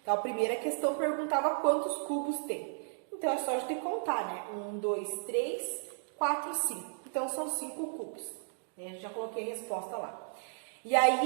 Então, a primeira questão perguntava quantos cubos tem. Então, é só a gente contar, né? 1, 2, 3, 4, 5. Então, são 5 cubos. Já coloquei a resposta lá. E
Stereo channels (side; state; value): left; silent; digital silence